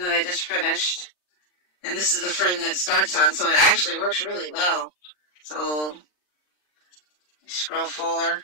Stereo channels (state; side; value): late; right; 39 ms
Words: I just finished, and this is the frame that it starts on, so it actually works really well. So, Scroll forward.